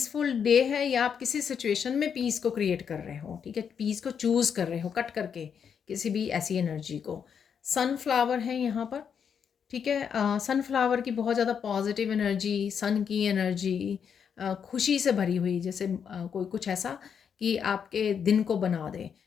डे है, या आप किसी सिचुएशन में पीस को क्रिएट कर रहे हो। ठीक है, पीस को चूज़ कर रहे हो कट करके किसी भी ऐसी एनर्जी को। सनफ्लावर है यहाँ पर। ठीक है, सनफ्लावर की बहुत ज़्यादा पॉजिटिव एनर्जी, सन की एनर्जी, खुशी से भरी हुई, जैसे कोई कुछ ऐसा कि आपके दिन को बना दे,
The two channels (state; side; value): quieter; right; 7.3 dB